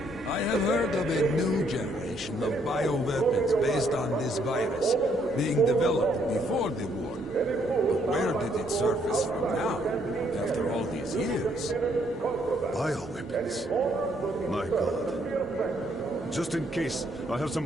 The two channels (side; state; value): both; normal; correlation 0.70